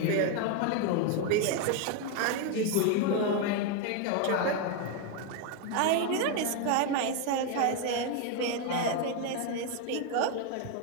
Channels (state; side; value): different; both; correlation 0.01